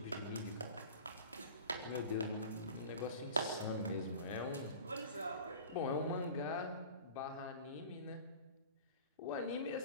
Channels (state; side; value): inverted; both; correlation -0.39